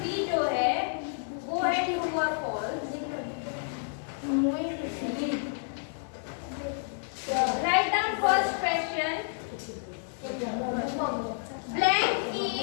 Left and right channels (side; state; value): right; silent; digital silence